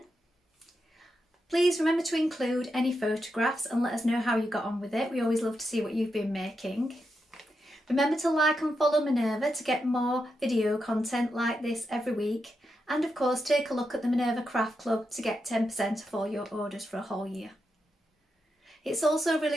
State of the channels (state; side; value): normal; both; correlation 0.85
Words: Please remember to include any photographs and let us know how you got on with it. We always love to see what you've been making. Remember to like and follow Minerva to get more video content like this every week. And of course, take a look at the Minerva Craft Club to get 10% off all your orders for a whole year. It's also really